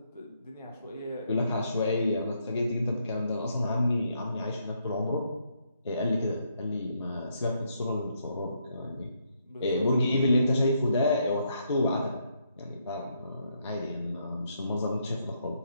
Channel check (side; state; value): both; inverted; correlation -0.75